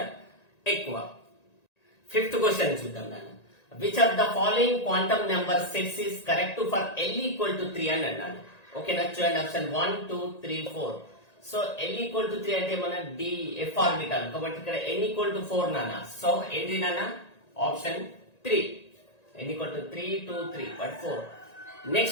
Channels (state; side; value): late; right; 1.9 ms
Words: ఎక్కువ. ఫిఫ్త్ క్వశ్చన్ చూద్దాం నాన్న. Which of the following quantum number sets is correct for L=3 అని అన్నాను. ఓకేనా, చూడండి ఆప్షన్ 1, 2, 3, 4. సో L=3 అంటే మన DF ఆర్బిటాల్ కాబట్టి ఇక్కడ N=4 నాన్న. సో ఏంటి నాన్న option 3. N=3, 2, 3 but 4.